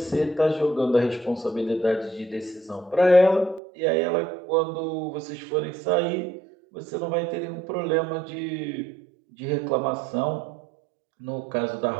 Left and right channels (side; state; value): left; drops out; at 3.6 s